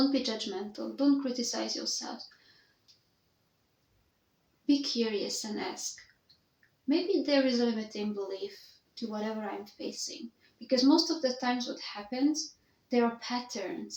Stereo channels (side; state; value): both; identical; correlation 1.00